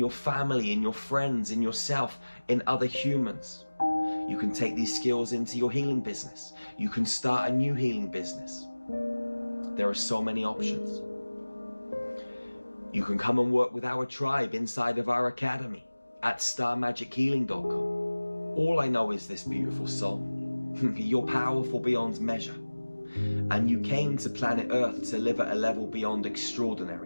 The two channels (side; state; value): both; inverted; correlation -1.00